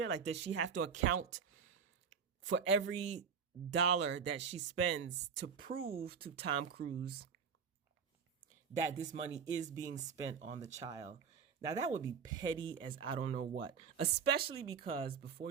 Like, does she have to account for every dollar that she spends to prove to Tom Cruise that this money is being spent on the child? Now that would be petty as I don't know what, especially because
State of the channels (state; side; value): quieter; left; 6.5 dB